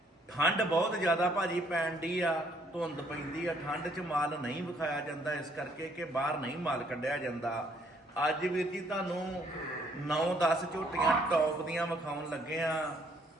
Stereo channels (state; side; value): normal; both; correlation 0.66